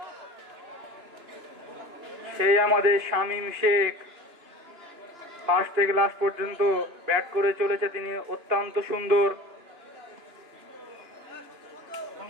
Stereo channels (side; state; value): left; late; 2.9 ms